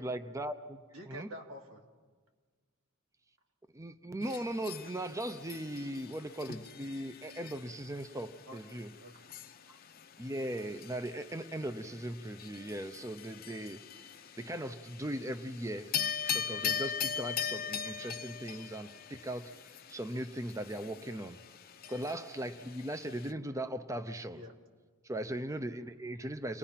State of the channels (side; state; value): both; normal; correlation 0.50